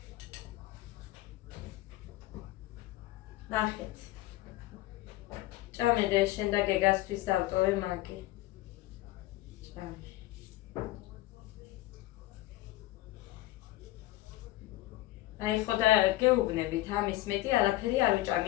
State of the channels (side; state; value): right; quieter; 17.1 dB